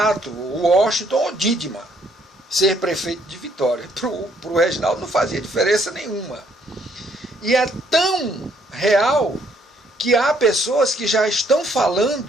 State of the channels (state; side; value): normal; both; correlation 0.67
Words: Washington ou Didima ser prefeito de Vitória. Para o Reginaldo não fazia diferença nenhuma. E é tão real que há pessoas que já estão